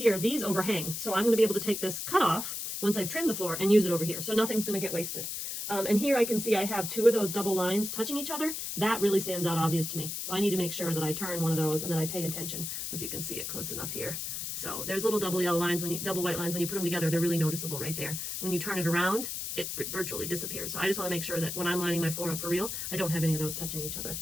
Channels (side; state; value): left; noise; hiss, 5 dB below the sound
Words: these overhang. So I'm going to be able to take this cut off once I've trimmed the floor and use it over here. So nothing's going to get wasted. And here I can see I have 2 of those double lines touching each other. That really stands out obvious to me. So I need to make sure that I turn one of those and that I pay attention, if you can see it close enough here. So there's little double yellow lines, double white lines, when you put them together, they're really noticeable right there. When you turn it around, it virtually disappears. So I just want to make sure that when I'm lining my floor up for real, I don't have any of those touching each other.